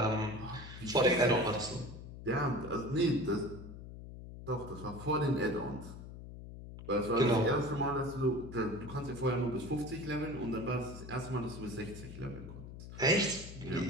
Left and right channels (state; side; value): noise; left; hum, 12 dB below the sound